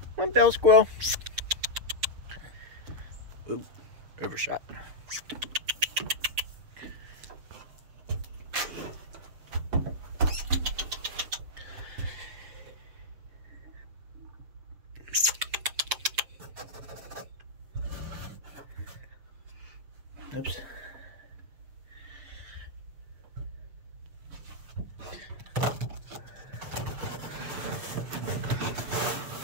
One bell squirrel. Ooh, overshot. Oops.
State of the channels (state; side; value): late; left; 6.6 ms